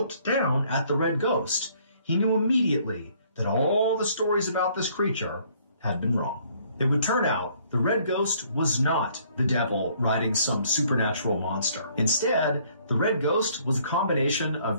down at the Red Ghost, he knew immediately that all the stories about this creature had been wrong. It would turn out the Red Ghost was not the devil riding some supernatural monster. Instead, the Red Ghost was a combination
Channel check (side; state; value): both; inverted; correlation -0.63